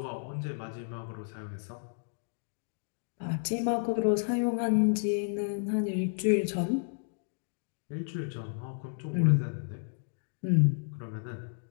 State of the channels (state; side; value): silent; right; digital silence